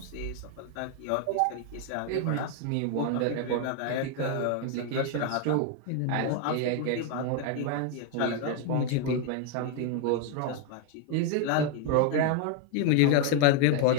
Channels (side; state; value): both; different; correlation 0.01